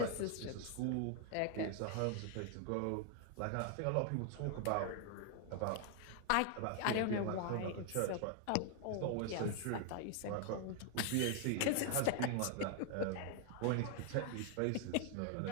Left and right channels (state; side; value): different; both; correlation 0.00